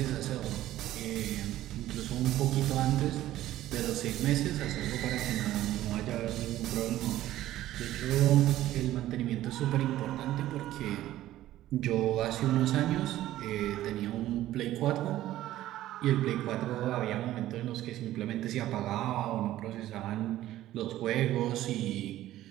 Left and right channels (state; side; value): quieter; left; 14.2 dB